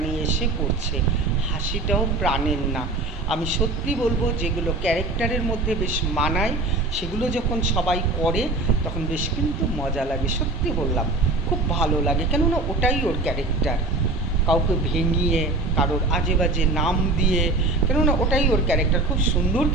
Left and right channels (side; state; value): left; quieter; 3.1 dB